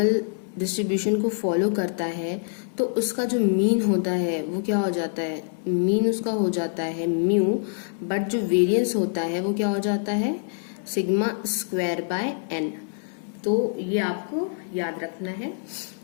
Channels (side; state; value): right; silent; 61 dB below the other